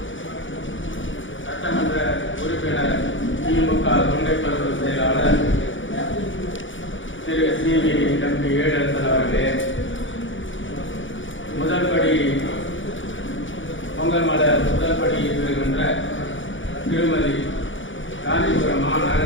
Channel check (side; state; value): right; late; 0.56 ms